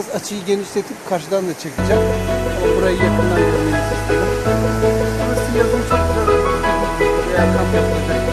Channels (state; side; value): identical; both; correlation 1.00